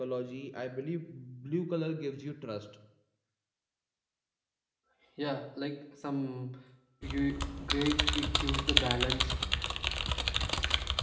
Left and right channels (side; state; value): both; identical; correlation 1.00